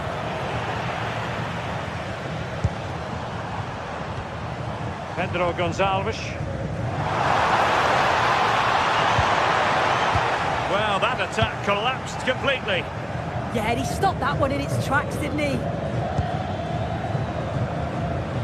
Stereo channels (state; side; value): identical; both; correlation 1.00